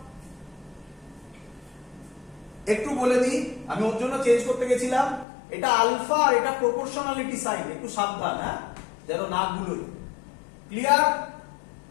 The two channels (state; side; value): drops out; right; at 5.2 s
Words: একটু বলে দিই, আমি ওর জন্য চেঞ্জ করতে গেছিলাম, এটা আলফা আর এটা প্রপোর্শনালিটি সাইন, একটু সাবধান হ্যাঁ, যেন না ভুলোই। ক্লিয়ার?